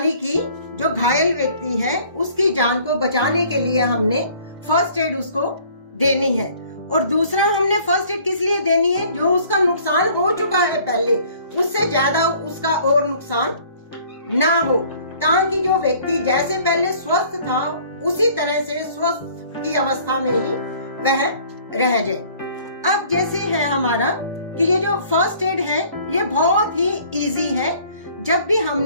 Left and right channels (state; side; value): inverted; both; correlation -0.54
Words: कि जो घायल व्यक्ति है उसकी जान को बचाने के लिए हमने फर्स्ट एड उसको देनी है। और दूसरा, हमने फर्स्ट एड किस लिए देनी है? जो उसका नुकसान हो चुका है पहले, उससे ज्यादा उसका और नुकसान ना हो, ताकि जो व्यक्ति जैसे पहले स्वस्थ था उसी तरह से स्वस्थ की अवस्था में ही वह रह जाए। अब जैसे है हमारा कि ये जो फर्स्ट एड है ये बहुत ही इजी है। जब भी